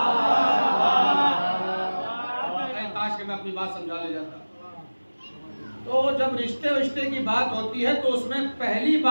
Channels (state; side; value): inverted; both; correlation -1.00